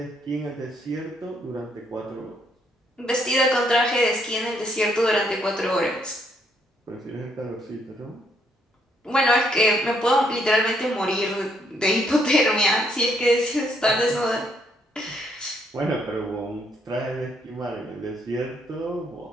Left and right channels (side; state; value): both; normal; correlation 0.72